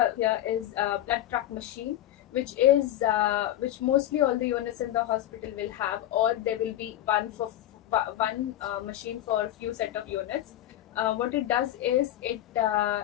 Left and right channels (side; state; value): right; quieter; 13.2 dB